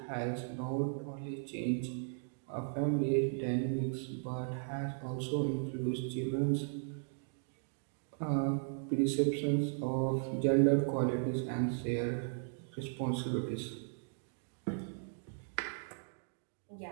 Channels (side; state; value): left; silent; digital silence